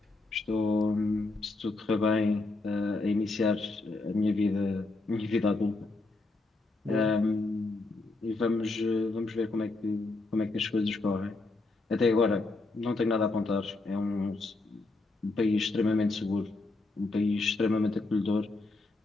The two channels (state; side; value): quieter; right; 3.3 dB